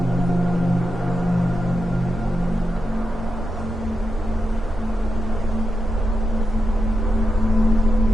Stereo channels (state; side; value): normal; both; correlation 0.87